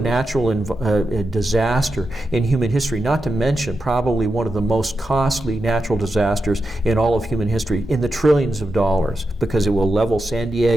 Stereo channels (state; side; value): normal; both; correlation 0.88